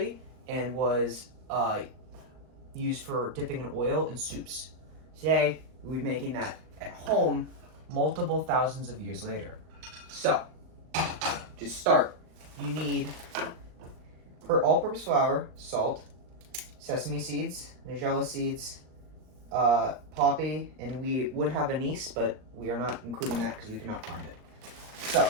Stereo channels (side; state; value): left; late; 39 ms